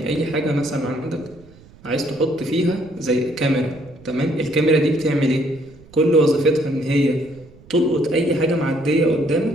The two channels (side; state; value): right; noise; rumble, 24 dB below the sound